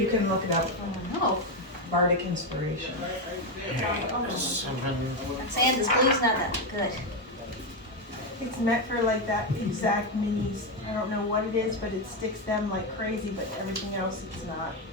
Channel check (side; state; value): both; normal; correlation 0.08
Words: can look it up. No. Bardic inspiration. Seven. I'm saying this glue's not that good. It's meant for like that exact minis. I don't know what it is, but it sticks them like crazy, but everything else it's not.